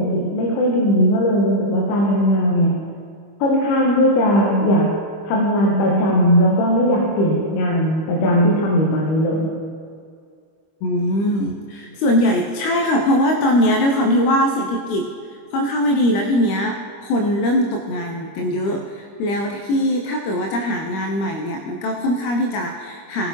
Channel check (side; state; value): right; late; 25 ms